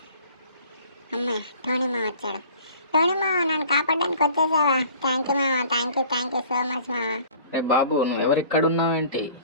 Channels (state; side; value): inverted; both; correlation -0.49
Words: అమ్మాయి టోనీ మామ వచ్చాడు. టోనీ మామ, నన్ను కాపాడడానికి వచ్చేసావా? థ్యాంక్ యూ మామ, థ్యాంక్ యూ సో మచ్ మామ. రే బాబు, నువ్వెవరు ఇక్కడ ఉన్నావేంటి?